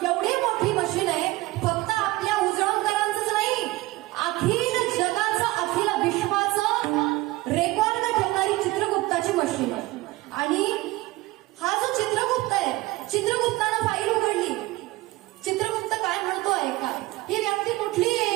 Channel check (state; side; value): quieter; left; 19.6 dB